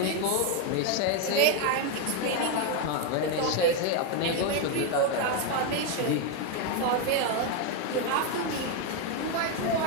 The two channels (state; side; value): different; both; correlation 0.01